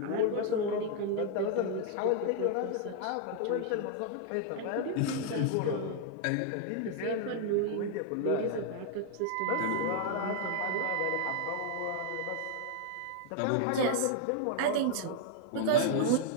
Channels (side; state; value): both; different; correlation 0.00